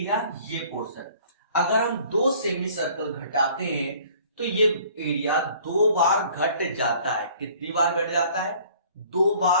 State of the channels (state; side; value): inverted; both; correlation -0.54